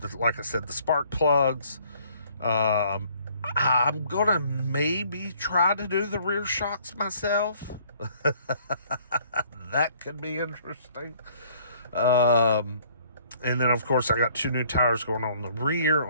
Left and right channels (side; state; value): both; inverted; correlation -0.60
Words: like I said, the spark plugs. I'm going to maybe try to do the rear shocks myself. That could be interesting. And then, of course, I got 2 new tires going on the rear